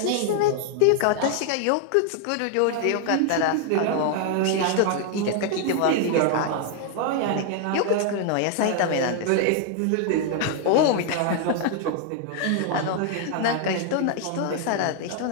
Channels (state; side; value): different; both; correlation 0.00